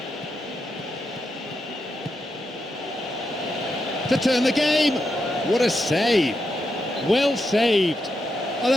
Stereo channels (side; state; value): both; normal; correlation 0.84